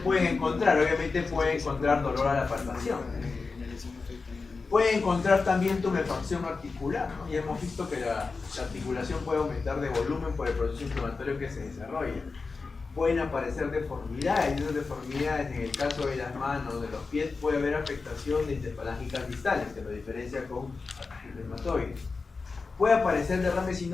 encontrar, obviamente pueden encontrar dolor a la palpación. Pueden encontrar también tumefacción articular, ¿no? Ya hemos visto que la articulación puede aumentar de volumen por el proceso inflamatorio que se desarrolla. Pueden aparecer deformidades, y esas deformidades en el caso de las manos, de los pies, puede haber afectación de interfalángicas distales, que lo diferencia con artritis reumatoide. Puede aparecer derrame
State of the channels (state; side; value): quieter; right; 4.3 dB